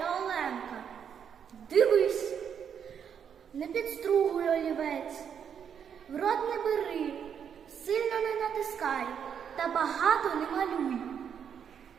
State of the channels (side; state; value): left; quieter; 7.9 dB